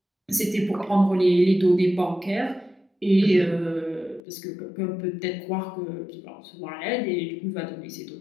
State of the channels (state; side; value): drops out; right; at 4.2 s